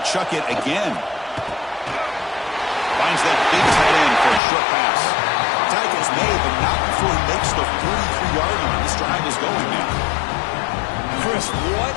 chuck it again. Finds that big tight end for a short pass. Tackle's made, but not before he makes the 43-yard line. This drive is going now. Chris, what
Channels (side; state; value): right; drops out; at 4.4 s